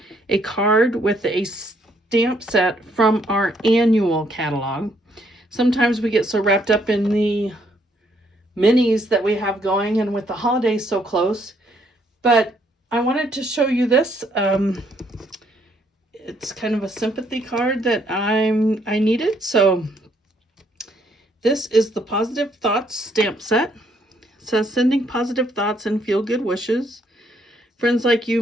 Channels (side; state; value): both; normal; correlation 0.70